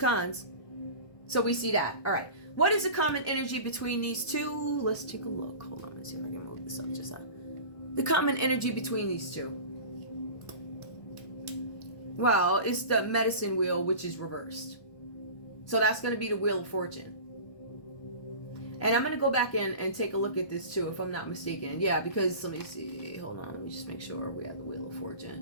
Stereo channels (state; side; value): late; right; 1.2 ms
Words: So we see that. All right. What is the common energy between these two? Let's take a look. Hold on. Let's see if I can move this up just the common energy between these two. Well, it's the medicine wheel, which is reversed. So that's going to be the Wheel of Fortune. And I'm going to go back in and take a look at this too, if I'm not mistaken. Yeah, because let me see. Hold on. Let me just make sure we have the Wheel of